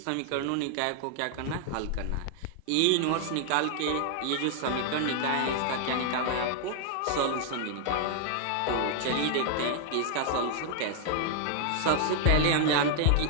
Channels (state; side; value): different; both; correlation -0.01